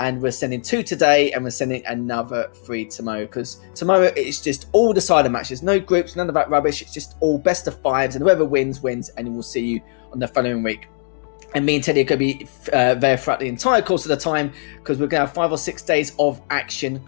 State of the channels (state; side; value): silent; right; digital silence